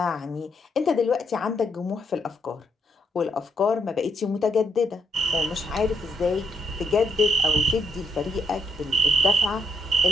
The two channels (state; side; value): normal; both; correlation 0.77